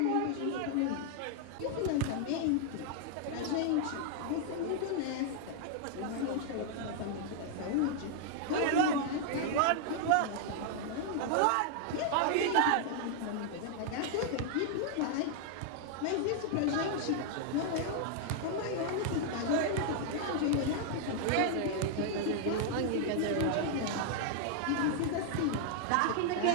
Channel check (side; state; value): both; different; correlation 0.00